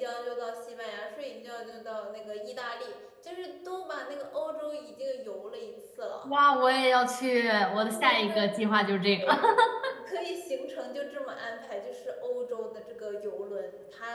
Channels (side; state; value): both; identical; correlation 1.00